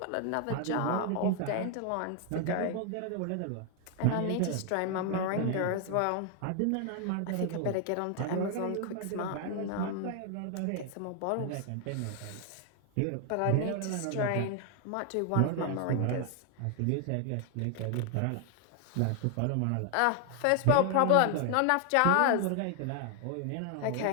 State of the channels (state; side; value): different; both; correlation 0.00